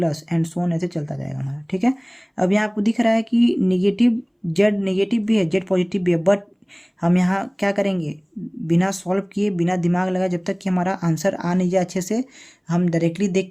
एंड सो ऑन ऐसे चलता जाएगा हमारा। ठीक है, अब यहाँ आपको दिख रहा है कि निगेटिव जेड नेगेटिव भी है, जेड पॉजिटिव भी है, बट हम यहाँ क्या करेंगे, बिना सॉल्व किए बिना दिमाग लगाए जब तक कि हमारा आंसर आ नहीं जाए अच्छे से, हम डायरेक्टली देख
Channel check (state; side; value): identical; both; correlation 1.00